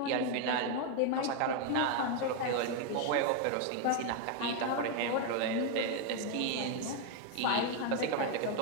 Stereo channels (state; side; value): different; both; correlation 0.01